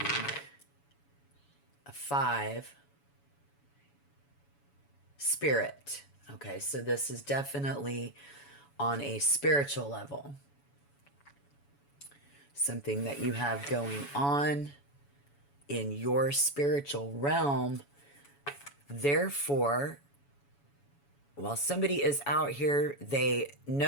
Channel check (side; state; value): right; late; 7.1 ms